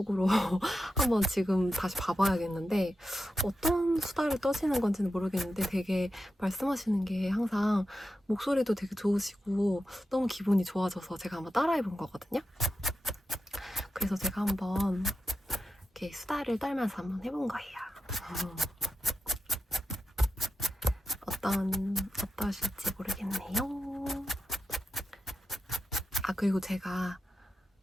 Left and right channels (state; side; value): normal; both; correlation 0.90